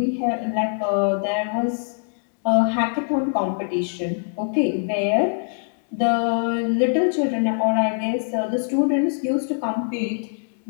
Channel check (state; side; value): silent; right; 63 dB below the other